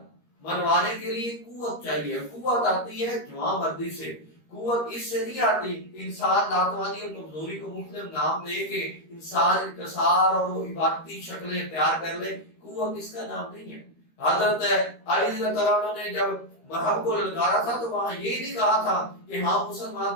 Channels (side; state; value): right; late; 13 ms